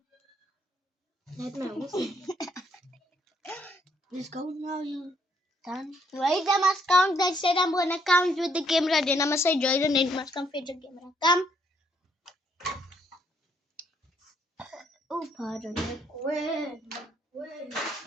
Let my awesome. Let's go now, you done? Wait, I must count. I said I'm gonna count with the camera. Then I must say Joy, then it must come fetch the camera. Come. Oh, pardon. Where?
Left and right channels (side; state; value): both; normal; correlation 0.70